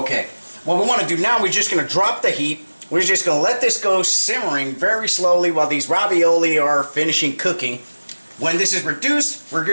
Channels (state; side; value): inverted; both; correlation -1.00